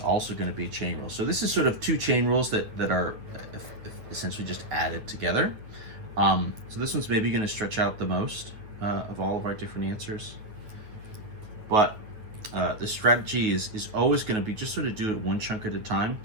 going to be a chain rule. So this is sort of two chain rules that are essentially just added together. So this one's maybe going to stretch out the most of all of our different answers. But the strategy is always going to be just sort of do it one chunk at a time,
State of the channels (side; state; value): left; late; 8.9 ms